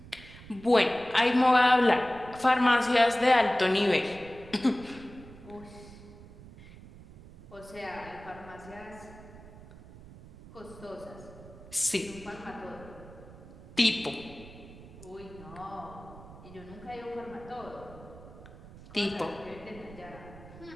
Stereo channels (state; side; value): noise; right; rumble, 18 dB below the sound